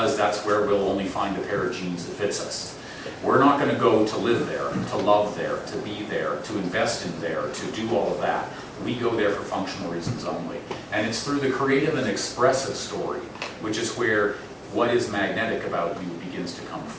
that's where we'll only find a pair of jeans that fits us. We're not going to go to live there, to love there, to be there, to invest in there, to do all of that. We go there for functional reasons only. And it's through the creative and expressive story, which is where what is magnetic about you begins to come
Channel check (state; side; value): identical; both; correlation 1.00